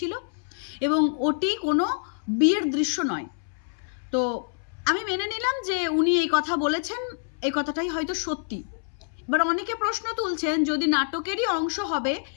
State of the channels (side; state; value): right; silent; 60 dB below the other